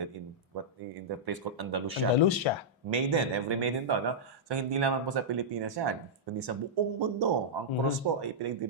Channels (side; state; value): both; normal; correlation -0.10